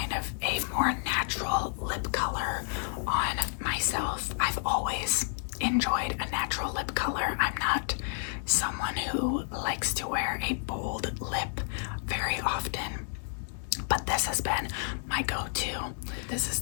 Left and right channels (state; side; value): silent; right; 56 dB below the other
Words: of a more natural lip color on myself. I've always enjoyed a natural lip color. I'm not someone who likes to wear a bold lip very often, but this has been my go-to. This is